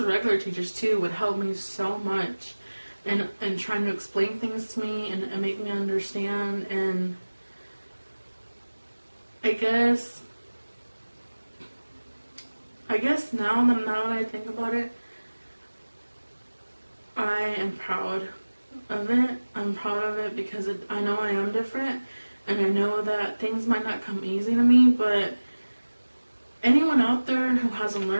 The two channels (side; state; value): both; inverted; correlation -1.00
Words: regular teachers too, would help me so much. And trying to explain things to me and make me understand. And I guess now that I think about it, I am proud of it. I'm proud of it because I know I am different, and I know that things might not come easy to me, but anyone out there who has a